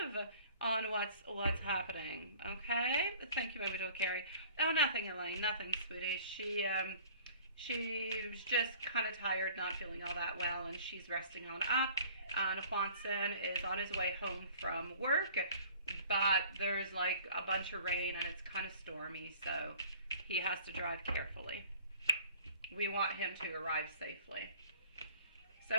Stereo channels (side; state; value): both; inverted; correlation -0.50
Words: on what's happening. Okay? Thank you, my beautiful Carrie. Oh, nothing, Elaine. Nothing, sweetie. She's just kind of tired, not feeling all that well, and she's resting on up. And Juanson is on his way home from work, but there's like a bunch of rain and it's kind of stormy, so he has to drive carefully. We want him to arrive safely.